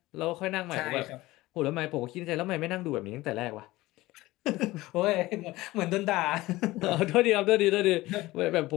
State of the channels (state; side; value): quieter; right; 18.6 dB